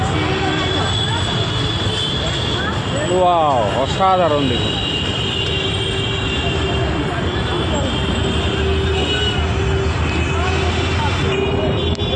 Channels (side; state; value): both; identical; correlation 1.00